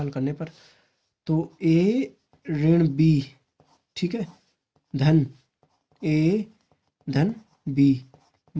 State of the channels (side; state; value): both; identical; correlation 1.00